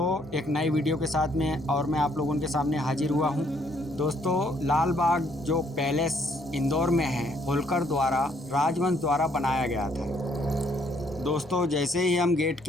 एक नई वीडियो के साथ में और मैं आप लोगों के सामने हाजिर हुआ हूं। दोस्तों, लाल बाग जो पैलेस इंदौर में है, होलकर द्वारा राजवंश द्वारा बनाया गया था। दोस्तों, जैसे ही हम गेट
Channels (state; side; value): normal; both; correlation 0.67